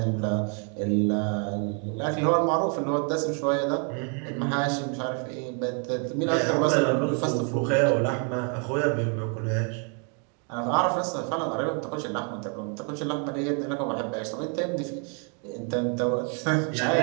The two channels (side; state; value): left; quieter; 39.8 dB